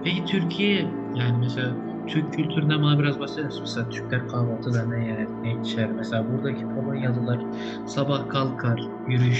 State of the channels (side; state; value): both; identical; correlation 1.00